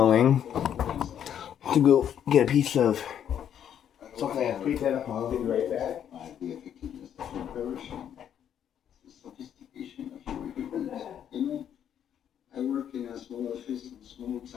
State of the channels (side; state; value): right; quieter; 9.4 dB